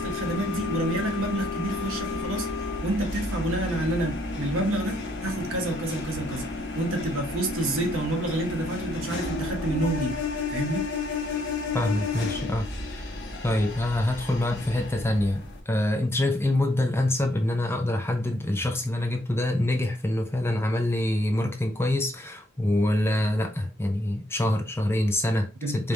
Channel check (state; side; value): normal; both; correlation 0.71